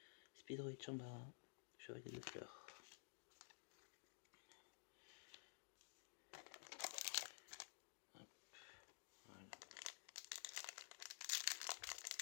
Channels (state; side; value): silent; right; digital silence